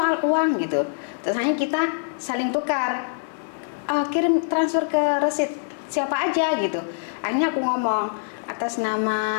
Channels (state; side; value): silent; right; digital silence